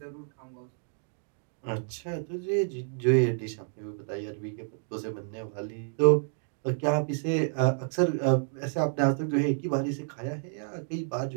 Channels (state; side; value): silent; left; digital silence